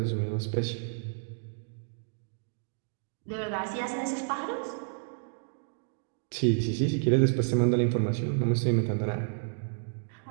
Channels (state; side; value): silent; left; digital silence